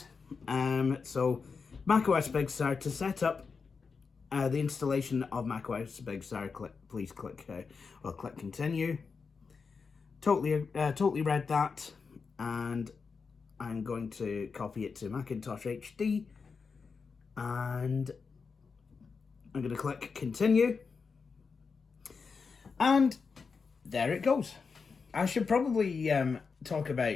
So, macOS Big Sur, to set up the installation of macOS Big Sur, please click continue. Totally read that, and I'm going to copy it to Macintosh HD, and I'm going to click continue, and there it goes. I should probably talk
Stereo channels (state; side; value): quieter; right; 5.1 dB